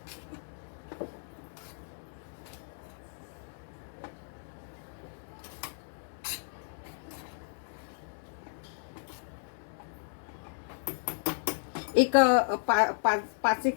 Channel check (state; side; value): silent; right; digital silence